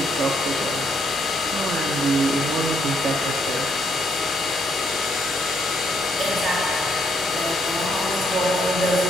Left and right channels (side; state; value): both; normal; correlation 0.73